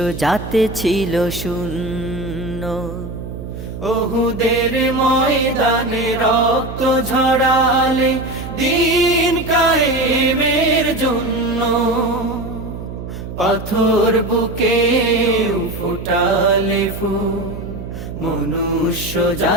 জাতে ছিল শূন্য। ওহুদের ময়দানে রক্ত ঝরালে দিন কায়েমের জন্য, পাথর বুকে ফোটালে ফুল, মনুষ্য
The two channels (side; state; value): right; noise; hum, 9 dB below the sound